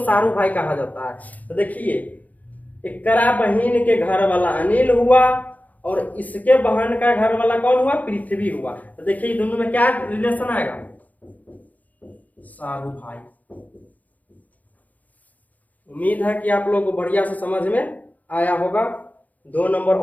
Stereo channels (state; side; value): late; right; 0.077 ms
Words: भाई कहा जाता है। तो देखिए एकरा बहन के घर वाला अनिल हुआ और इसके बहन का घर वाला कौन हुआ? पृथ्वी हुआ। तो देखिए दोनों में क्या रिलेशन आएगा? सारू भाई। उम्मीद है कि आप लोग को बढ़िया से समझ में आया होगा। 2 नंबर